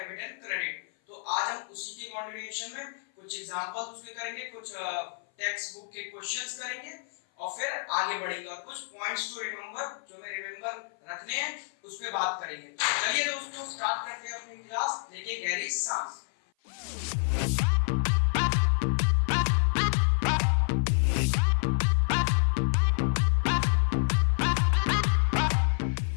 and credit. तो आज हम उसी के कंटिन्यूएशन में कुछ एग्जांपल्स उसके करेंगे, कुछ टेक्स्ट बुक के क्वेश्चंस करेंगे और फिर आगे बढ़ेंगे और कुछ पॉइंट्स टू रिमेंबर जो हमें रिमेंबर रखने हैं उस पे बात करेंगे। चलिए दोस्तों, स्टार्ट करते हैं अपनी क्लास। लेके गहरी सांस।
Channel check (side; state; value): right; silent; 55 dB below the other